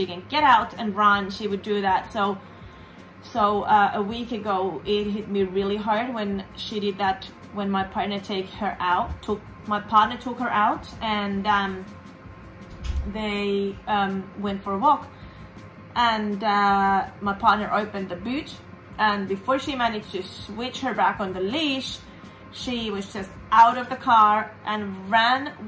can get out and run, she would do that. So a week ago it hit me really hard when she did that, when my partner took her out, and they went for a walk, and my partner opened the boot, and before she managed to switch her back on the leash, she was just out of the car and ran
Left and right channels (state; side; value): identical; both; correlation 1.00